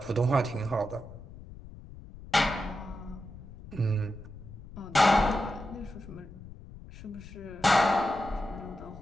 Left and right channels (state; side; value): noise; left; rumble, 16 dB below the sound